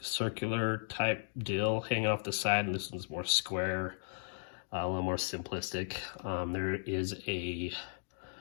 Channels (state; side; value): silent; right; digital silence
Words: type deal hanging off the side, and this one's more square, a little more simplistic. There is